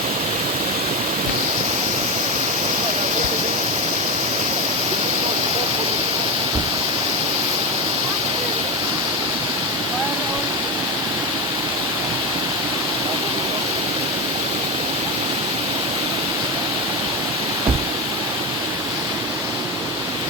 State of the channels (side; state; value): both; normal; correlation 0.15